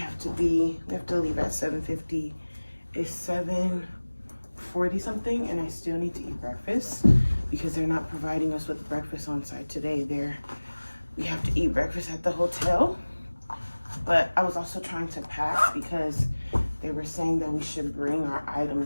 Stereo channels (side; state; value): both; inverted; correlation -1.00